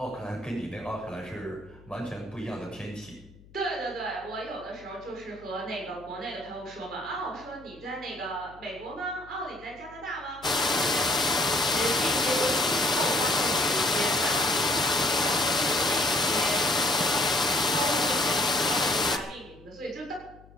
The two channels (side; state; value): left; noise; hum, 24 dB below the sound